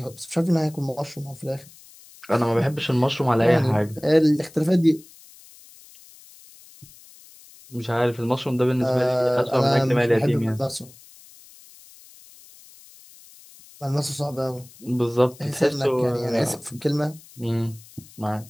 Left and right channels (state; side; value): noise; left; hiss, 23 dB below the sound